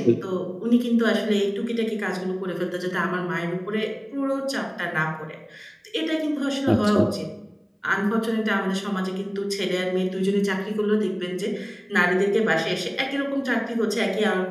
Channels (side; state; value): both; identical; correlation 1.00